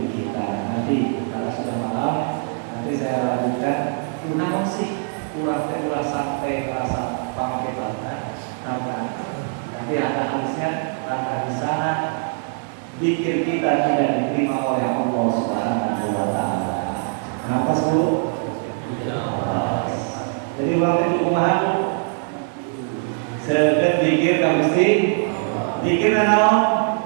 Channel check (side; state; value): left; silent; 61 dB below the other